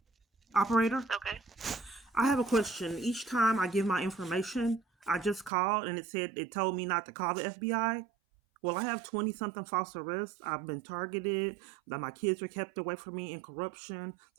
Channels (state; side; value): drops out; left; at 5.5 s